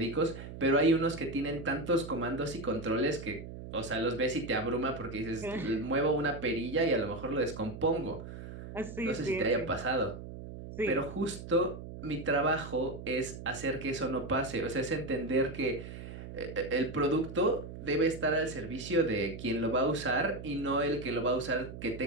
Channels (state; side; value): noise; right; hum, 11 dB below the sound